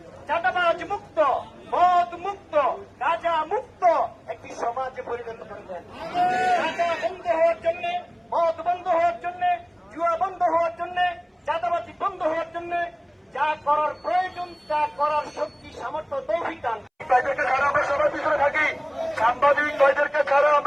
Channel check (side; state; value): both; identical; correlation 1.00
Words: চাঁদাবাজ মুক্ত, মদ মুক্ত, গাঁজা মুক্ত একটি সমাজে পরিণত করে দেন। গাঁজা বন্ধ হওয়ার জন্য, মদ বন্ধ হওয়ার জন্য, জুয়া বন্ধ হওয়ার জন্য, চাঁদাবাজি বন্ধ হওয়ার জন্য যা করার প্রয়োজন তা করার শক্তি সামর্থ্য তৌফিক দান। কয়েদেরকে ছাড়া আমরা সবার পিছনে থাকি, সাংবাদিক কয়েদেরকে ছাড়া